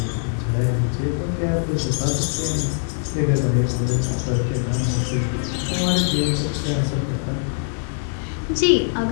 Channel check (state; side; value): silent; right; 64 dB below the other